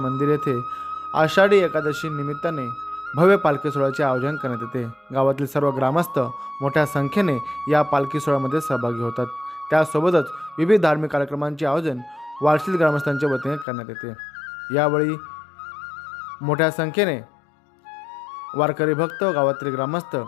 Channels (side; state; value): right; drops out; at 13.7 s